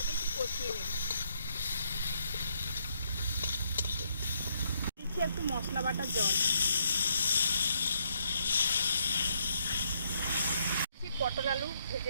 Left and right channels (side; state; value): both; inverted; correlation -0.74